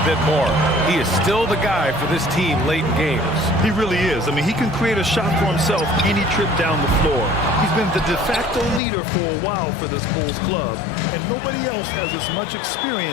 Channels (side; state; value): right; drops out; at 8.8 s